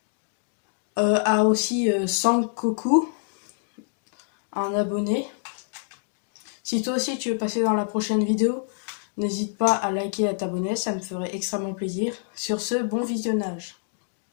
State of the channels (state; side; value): silent; right; digital silence